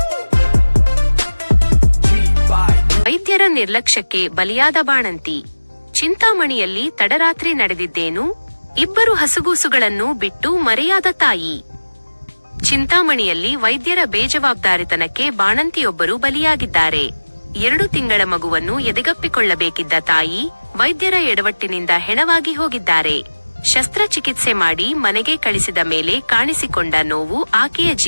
ವೈದ್ಯರ ನಿರ್ಲಕ್ಷ್ಯಕ್ಕೆ ಬಲಿಯಾದ ಬಾಣಂತಿ. ಚಿಂತಾಮಣಿಯಲ್ಲಿ ತಡರಾತ್ರಿ ನಡೆದಿದ್ದೇನು? ಇಬ್ಬರು ಹಸುಗೂಸುಗಳನ್ನು ಬಿಟ್ಟು ಮರೆಯಾದ ತಾಯಿ. ಚಿಂತಾಮಣಿಯಲ್ಲಿ ವೈದ್ಯರ ಬೇಜವಾಬ್ದಾರಿತನಕ್ಕೆ ಬಾಣಂತಿಯೊಬ್ಬರು ಬಲಿಯಾಗಿದ್ದಾರೆ. 2 ತಿಂಗಳ ಮಗುವನ್ನು ಎದೆಗಪ್ಪಿಕೊಳ್ಳಬೇಕಿದ್ದ ತಾಯಿ ವೈದ್ಯರ ಎಡವಟ್ಟಿನಿಂದ ಹೆಣವಾಗಿ ಹೋಗಿದ್ದಾರೆ. ಶಸ್ತ್ರಚಿಕಿತ್ಸೆ ಮಾಡಿ ಮನೆಗೆ ಕಳಿಸಿದ ಮೇಲೆ ಕಾಣಿಸಿಕೊಂಡ ನೋವು ಆಕೆಯ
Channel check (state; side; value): inverted; both; correlation -1.00